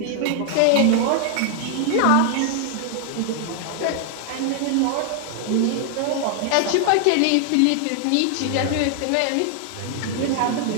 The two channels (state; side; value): different; both; correlation 0.00